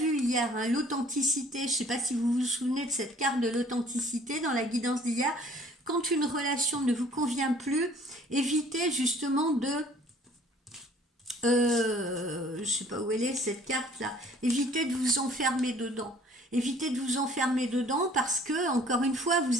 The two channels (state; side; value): normal; both; correlation 0.54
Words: hier, hein, l'authenticité, je ne sais pas si vous vous souvenez de cette carte de l'authenticité dans la guidance d'hier. Quand une relation ne vous convient plus, évitez justement de... je ne sais pas où elle est cette carte-là. Évitez de vous enfermer dedans. Évitez de vous enfermer dedans parce que, encore une fois,